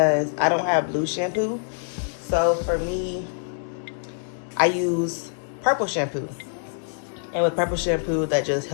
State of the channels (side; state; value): right; silent; digital silence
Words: I don't have blue shampoo. So for me, I use purple shampoo, and with purple shampoo that just